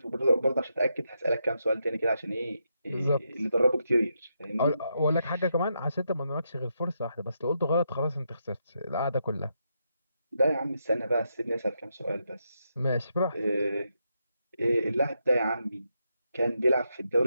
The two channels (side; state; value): both; inverted; correlation -0.82